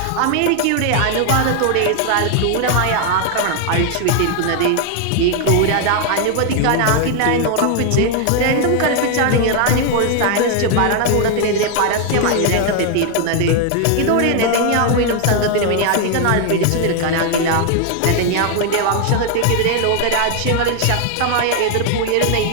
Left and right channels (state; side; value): different; both; correlation 0.00